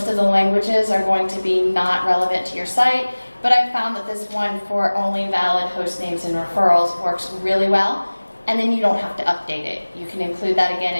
of the languages are going to be not relevant to your site. But I found that this one for only valid host names and referrals works really well, and then you don't have to update it. You can include that again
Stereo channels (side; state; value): both; inverted; correlation -1.00